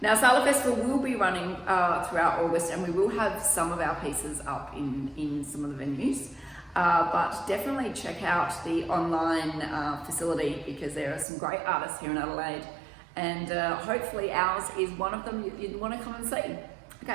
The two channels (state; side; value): drops out; left; at 11.2 s